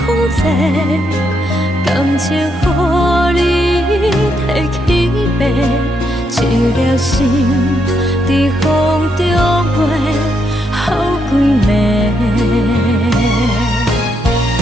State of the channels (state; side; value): normal; both; correlation 0.78